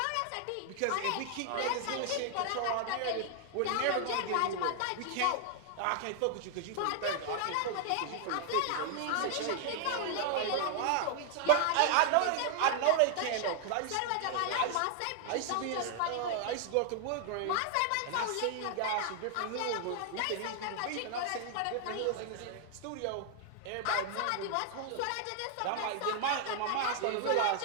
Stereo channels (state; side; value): different; both; correlation 0.00